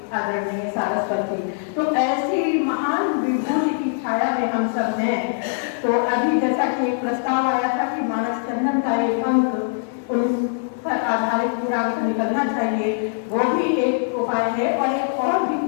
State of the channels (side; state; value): right; silent; 57 dB below the other